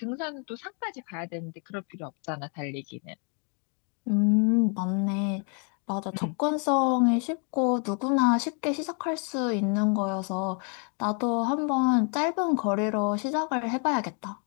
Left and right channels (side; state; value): right; quieter; 39.8 dB